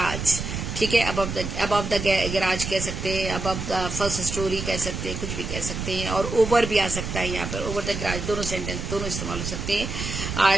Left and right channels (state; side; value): noise; right; rumble, 5 dB below the sound